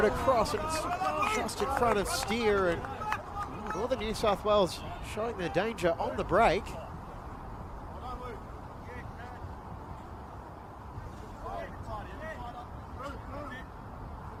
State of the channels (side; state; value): both; identical; correlation 1.00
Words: across, and it's just in front of Steer, and Northern New South Wales showing their danger on the break.